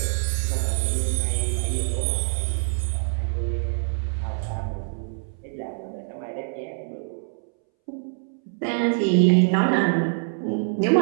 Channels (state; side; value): silent; left; 62 dB below the other